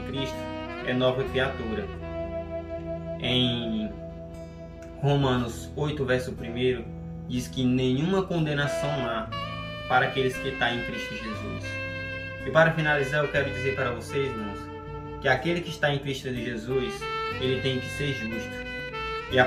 Cristo é nova criatura. Em Romanos 8, verso 1, diz que nenhuma condenação há para aqueles que estão em Cristo Jesus. E para finalizar, eu quero dizer para vocês, irmãos, que aquele que está em Cristo Jesus, ele tem que ser justo. E a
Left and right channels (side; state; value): both; identical; correlation 1.00